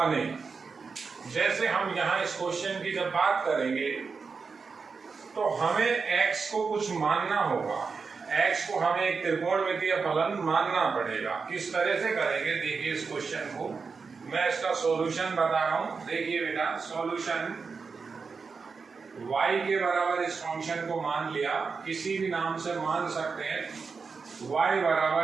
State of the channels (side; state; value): left; quieter; 5.0 dB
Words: जैसे हम यहाँ इस क्वेश्चन की जब बात करेंगे तो हमें x को कुछ मानना होगा। x को हमें एक त्रिकोणमितीय फलन मानना पड़ेगा। किस तरह से करेंगे देखिए इस क्वेश्चन को। मैं इसका सॉल्यूशन बता रहा हूँ। देखिए बेटा, सॉल्यूशन y के बराबर इस फंक्शन को मान लिया, किसी भी नाम से मान सकते हैं। y